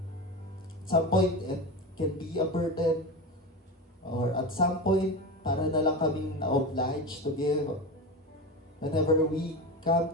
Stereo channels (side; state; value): both; normal; correlation 0.23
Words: At some point, it can be a burden. Or at some point, para na lang kaming na-obliged to give. Whenever we